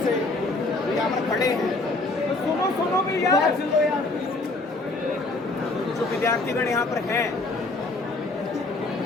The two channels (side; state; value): right; quieter; 3.1 dB